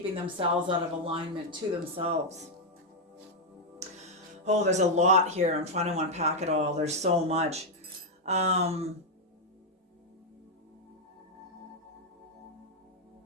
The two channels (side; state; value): both; normal; correlation -0.01